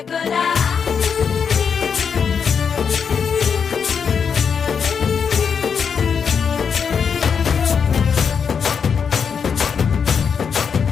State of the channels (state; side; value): quieter; right; 6.6 dB